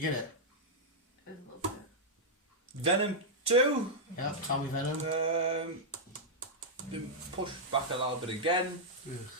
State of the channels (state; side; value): normal; both; correlation -0.06